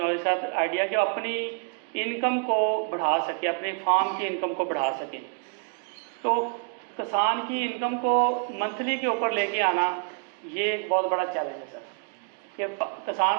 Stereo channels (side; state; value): left; quieter; 39.8 dB